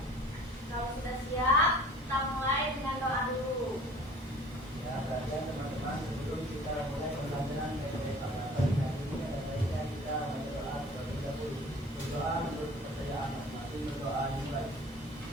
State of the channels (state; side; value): normal; both; correlation 0.48